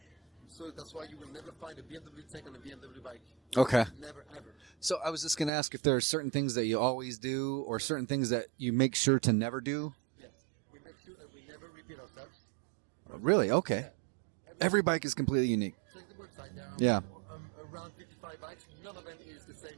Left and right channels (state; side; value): drops out; left; at 5.5 s